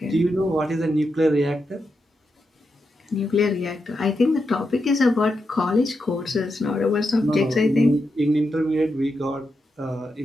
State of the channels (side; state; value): both; normal; correlation 0.86